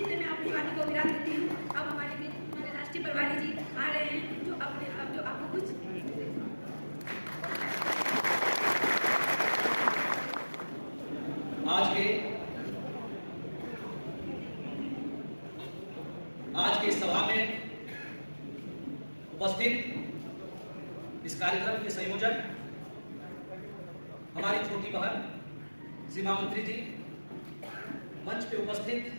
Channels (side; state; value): both; inverted; correlation -1.00